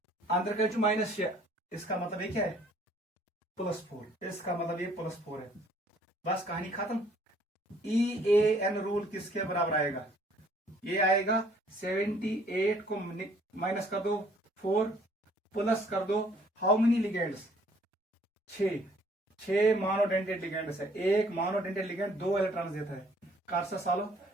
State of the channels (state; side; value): normal; both; correlation 0.60